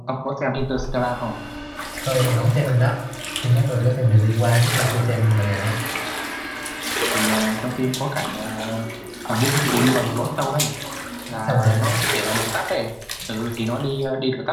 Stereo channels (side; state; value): both; identical; correlation 1.00